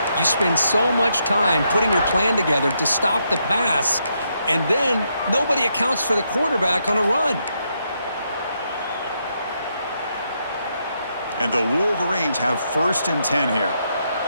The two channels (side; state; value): both; inverted; correlation -0.79